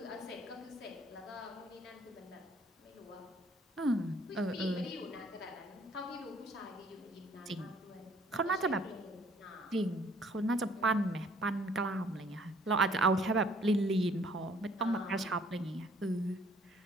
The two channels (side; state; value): both; normal; correlation 0.60